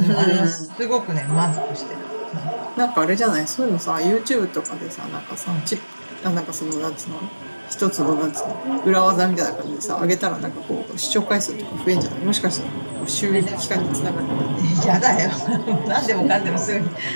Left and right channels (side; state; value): both; inverted; correlation -1.00